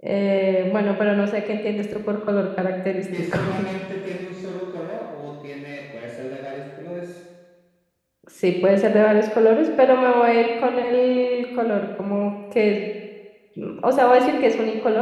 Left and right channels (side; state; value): both; identical; correlation 1.00